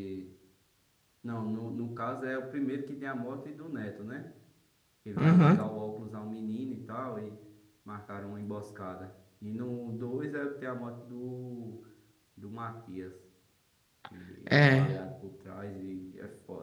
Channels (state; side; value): identical; both; correlation 1.00